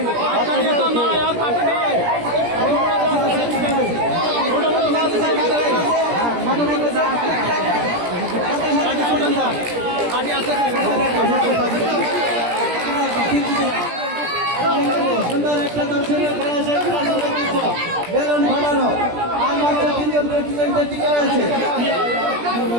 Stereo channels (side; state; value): left; late; 17 ms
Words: সুন্দর একটা দর্শনীয় খেলা বেলুন ফাটানো। আর মাত্র 3 জন প্রতিযোগিতা টিকে রয়েছে।